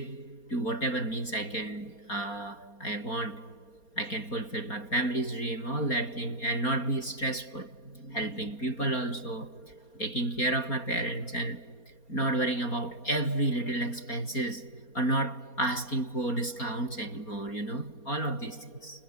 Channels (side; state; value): right; late; 4.3 ms